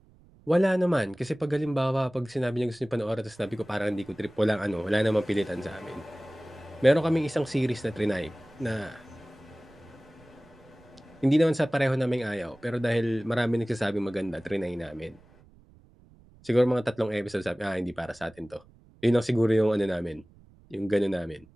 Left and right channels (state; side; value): noise; right; rumble, 27 dB below the sound